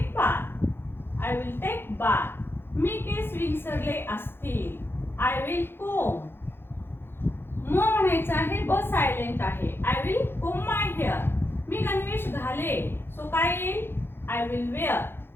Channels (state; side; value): late; right; 0.11 ms